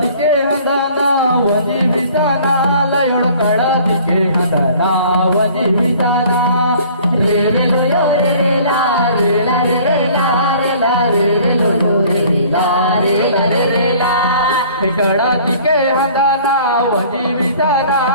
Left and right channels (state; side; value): inverted; both; correlation -0.52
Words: हंदाना वजी विताना लयोड कळतिके हंदाना वजी विताना रे रे लो यो रे रे ला रे ला रे रे ला रे ला रे रे लो यो रे रे ला रे ला रे रे ला कळतिके हंदाना वजी विताना